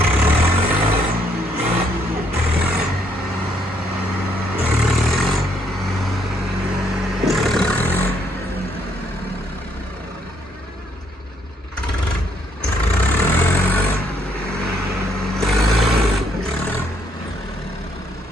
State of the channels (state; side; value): normal; both; correlation 0.70